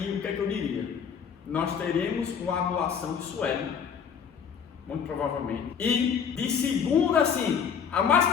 o que é que eu diria? Nós teremos uma anulação de Sueli, muito provavelmente. E de segunda, assim, a mais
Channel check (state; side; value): quieter; right; 7.1 dB